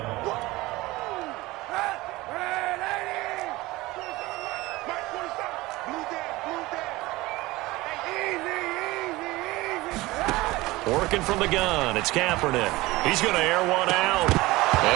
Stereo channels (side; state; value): left; quieter; 19.9 dB